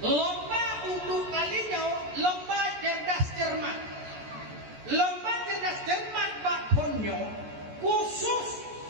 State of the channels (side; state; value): left; late; 14 ms